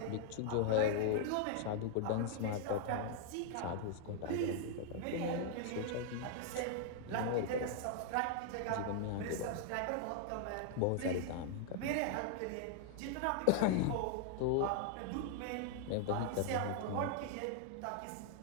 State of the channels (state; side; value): different; both; correlation 0.00